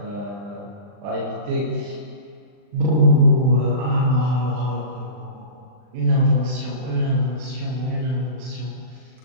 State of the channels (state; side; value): late; left; 40 ms